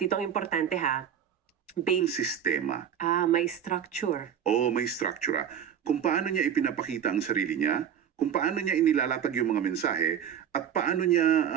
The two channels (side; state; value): left; quieter; 8.9 dB